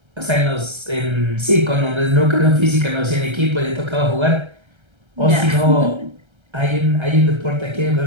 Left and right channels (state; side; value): late; left; 1.3 ms